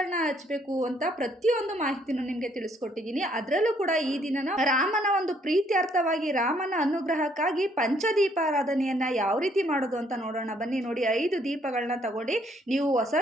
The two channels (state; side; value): normal; both; correlation 0.67